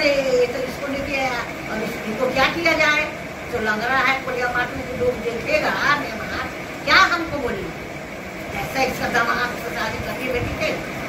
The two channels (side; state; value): both; identical; correlation 1.00